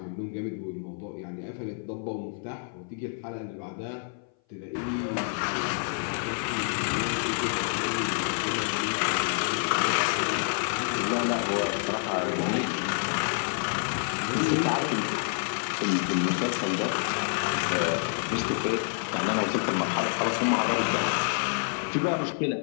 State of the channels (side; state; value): right; silent; 57 dB below the other